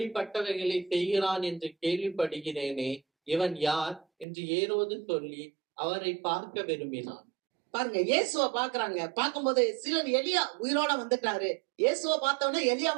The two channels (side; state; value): left; drops out; at 4.2 s